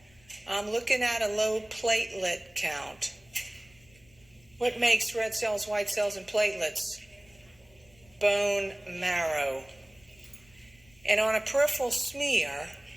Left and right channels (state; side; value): noise; left; rumble, 29 dB below the sound